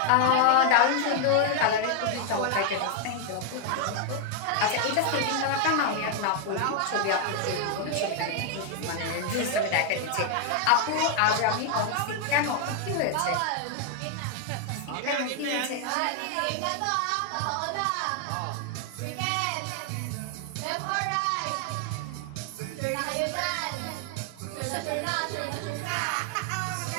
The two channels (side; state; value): both; different; correlation 0.00